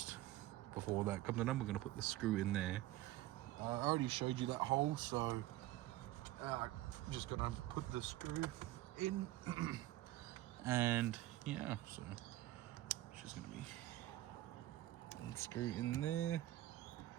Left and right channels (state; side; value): quieter; left; 15.7 dB